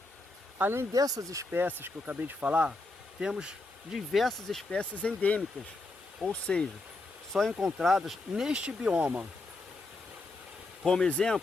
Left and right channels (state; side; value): quieter; right; 3.1 dB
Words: Além dessas espécies que eu acabei de falar, temos diversas espécies endêmicas, ou seja, só encontradas neste bioma. Como